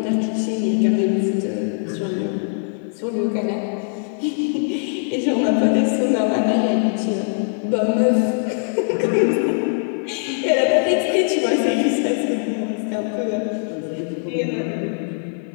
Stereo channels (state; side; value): silent; right; 65 dB below the other